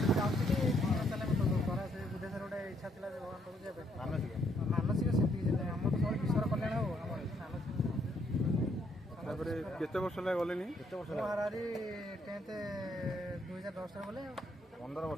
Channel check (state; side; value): normal; both; correlation 0.71